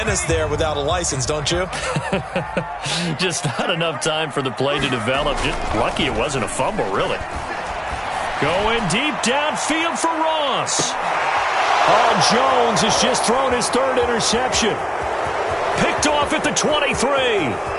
there without a license, don't you? Just not enough time for the play to develop. Just lucky it wasn't a fumble, really. Going deep downfield for Ross. Oh, Jones has just thrown his 3rd interception. Picked off at the 23.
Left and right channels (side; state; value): both; identical; correlation 1.00